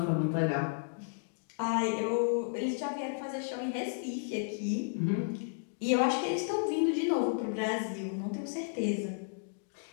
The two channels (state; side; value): silent; right; digital silence